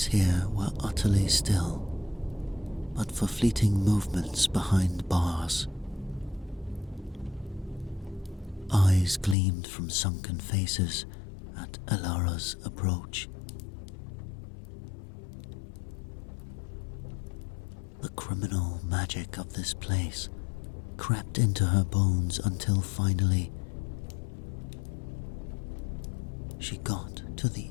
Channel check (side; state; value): right; drops out; at 9.3 s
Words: here were utterly still, but for fleeting movements behind bars. Eyes gleamed from sunken faces at Alara's approach. The criminal magic of this place crept into her bones until finally she got to the